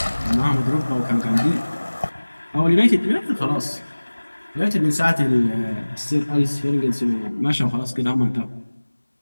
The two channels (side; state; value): both; inverted; correlation -1.00